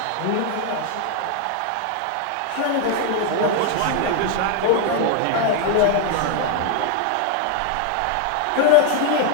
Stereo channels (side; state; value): both; different; correlation 0.01